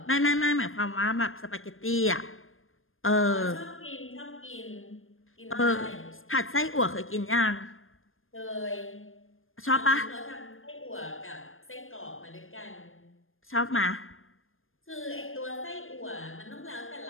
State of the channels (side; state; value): right; late; 0.60 ms